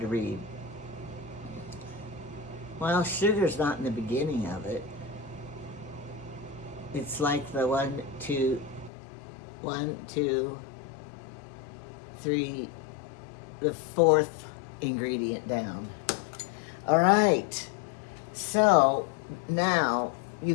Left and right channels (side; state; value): right; drops out; at 8.9 s